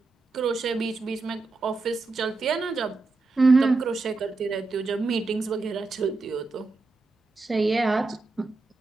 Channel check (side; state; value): left; quieter; 3.6 dB